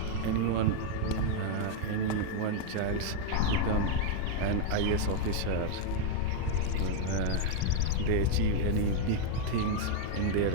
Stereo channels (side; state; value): both; different; correlation 0.00